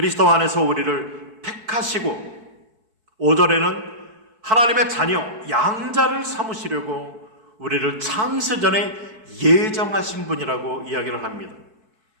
안에서 우리를 택하시고 5절에는 하나님의 자녀, 양자를 삼으시려고 우리를 창세 전에 예정하신 분이라고 이야기를 합니다.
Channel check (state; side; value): late; left; 4.5 ms